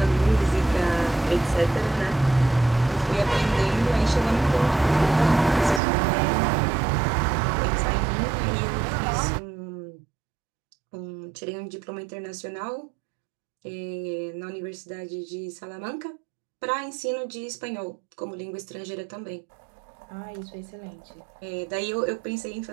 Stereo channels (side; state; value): left; drops out; at 5.8 s